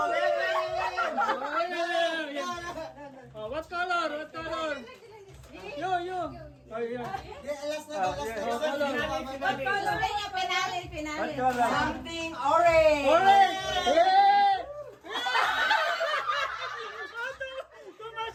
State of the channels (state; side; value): identical; both; correlation 1.00